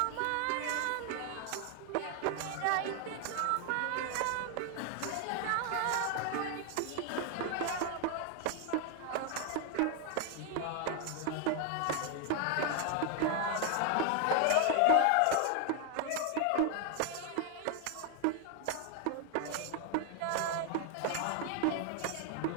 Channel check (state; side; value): different; both; correlation 0.00